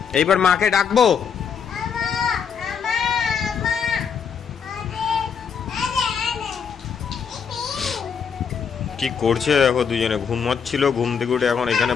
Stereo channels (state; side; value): quieter; right; 6.8 dB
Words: এইবার মাকে ডাকবো। কি করছে দেখো, দুজনে ঘুমাচ্ছিল, ঘুম থেকে উঠে এখন এখানে